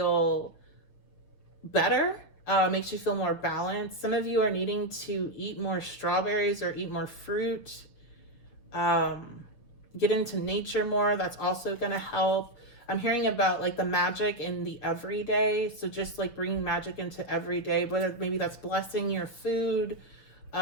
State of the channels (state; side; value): late; right; 6.5 ms